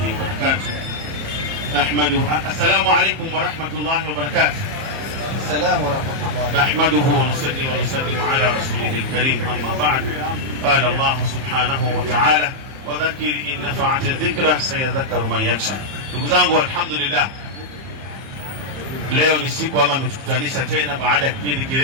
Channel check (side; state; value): left; late; 30 ms